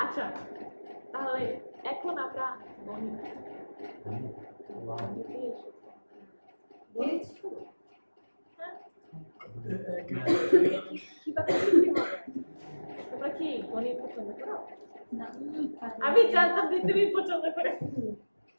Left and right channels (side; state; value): both; inverted; correlation -1.00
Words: আচ্ছা তাহলে এখন আমরা তোমরা কি গণিত পছন্দ করো আমি জানতাম যে তুমি পছন্দ করে